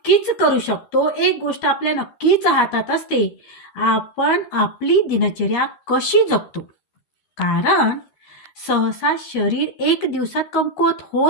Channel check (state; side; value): late; right; 13 ms